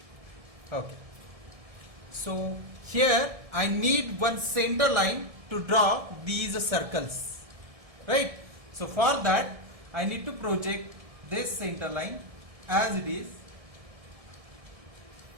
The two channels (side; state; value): left; late; 1.7 ms